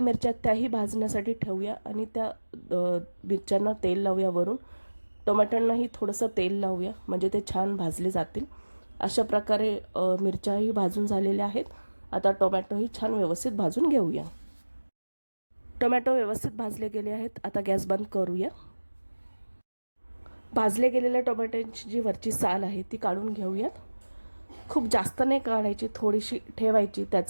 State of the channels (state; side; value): inverted; both; correlation -1.00